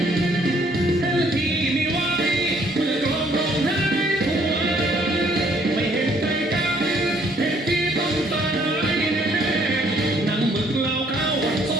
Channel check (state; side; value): normal; both; correlation 0.64